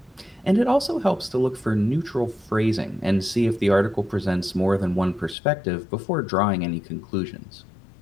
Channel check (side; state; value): right; drops out; at 5.4 s